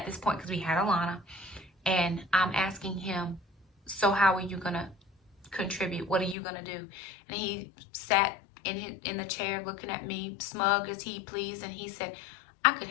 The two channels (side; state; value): right; drops out; at 6.4 s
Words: this point because we had Alana. And I'm asking him, so how are you going to contribute? What are you going to do? And he sat in the chair looking at me, smug as he pleased. And he said, I could